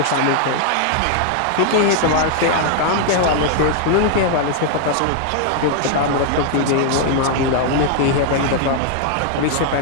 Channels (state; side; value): different; both; correlation 0.00